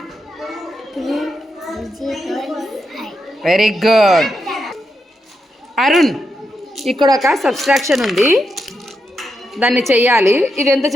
2 5. Very good. అరుణ్, ఇక్కడ ఒక సబ్స్ట్రాక్షన్ ఉంది, దాన్ని చెయ్యాలి. ఇది ఎంత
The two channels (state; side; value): normal; both; correlation 0.84